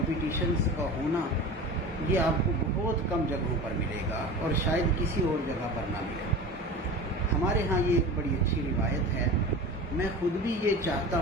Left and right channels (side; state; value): both; normal; correlation 0.33